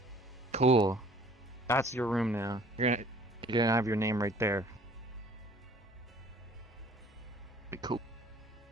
Cool. That's your room now. You're gonna have your name right there. Be cool.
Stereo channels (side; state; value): both; normal; correlation 0.53